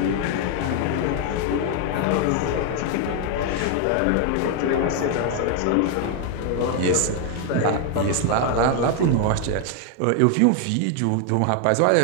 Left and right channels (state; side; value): different; both; correlation 0.00